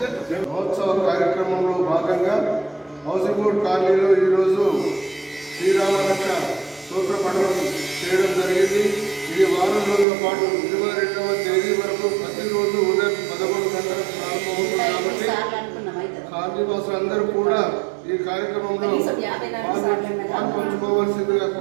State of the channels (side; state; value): left; drops out; at 10.1 s